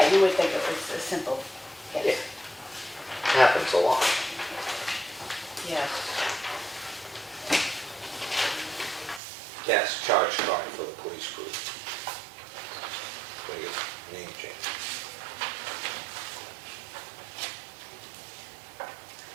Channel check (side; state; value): left; drops out; at 9.2 s